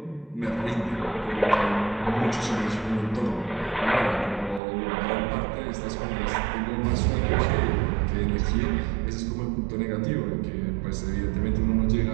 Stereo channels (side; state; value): left; drops out; at 4.6 s